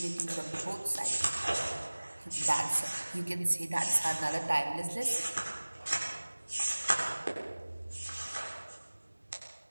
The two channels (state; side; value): inverted; both; correlation -1.00